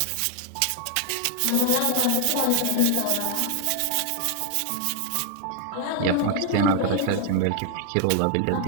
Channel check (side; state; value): both; different; correlation 0.00